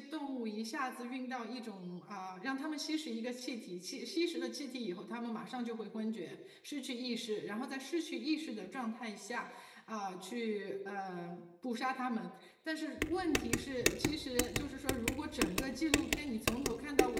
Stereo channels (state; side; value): identical; both; correlation 1.00